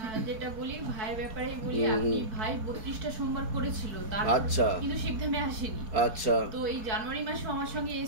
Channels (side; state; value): left; late; 4.6 ms